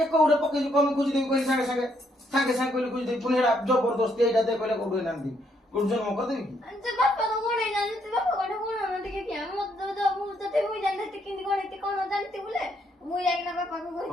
କୋଉଟା ପକେଇଛୁ କଣ ଖୋଜିଦେବି କହିଲି ସାଙ୍ଗେ ସାଙ୍ଗେ କହିଲି ଖୋଜିଦେବି ପୁଣି ଏଇଟା ଜବରଦସ୍ତି ଏଇଟା ଦେ କହିଲେ କୋଉଠୁ ଏନାନ୍ତି କୋଉଠୁ ଜନ୍ମ କରିଦେବି କି ଯେ ବାପା ତ ଗୁଣେଇ ଜାଣିଛି ବାପା କଣ ଗୁଣ ଟିକେ କିଆ ମୁଁ ଯଦି ମୁଁ ଜାଣିଥିଲି କେମିତି ଗଣିତି କଣ ଜାଣିତି ବୋଲେ ମୁଁ ଯାଇକିନା ବାପାକୁ କହିଛି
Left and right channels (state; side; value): normal; both; correlation 0.73